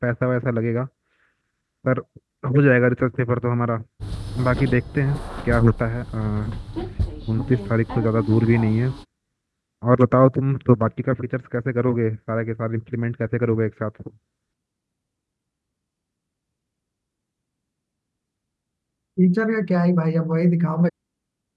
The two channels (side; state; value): both; identical; correlation 1.00